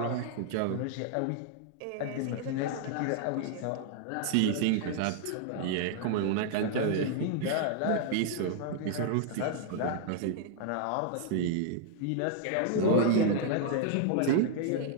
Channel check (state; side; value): different; both; correlation -0.01